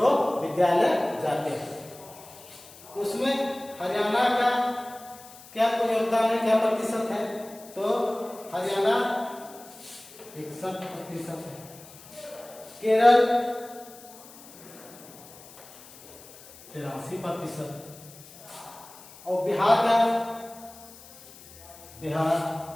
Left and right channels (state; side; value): noise; left; hiss, 20 dB below the sound